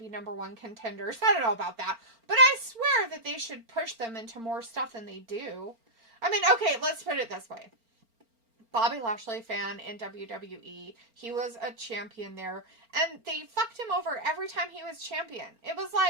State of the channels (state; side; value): late; left; 4.4 ms